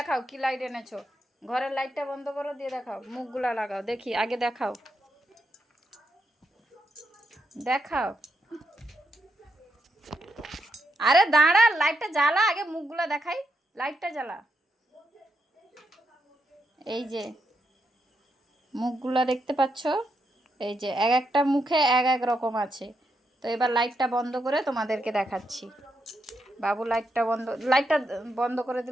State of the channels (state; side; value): normal; both; correlation 0.82